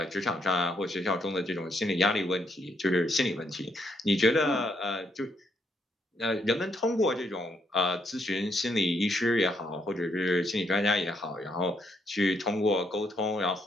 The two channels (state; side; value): normal; both; correlation 0.75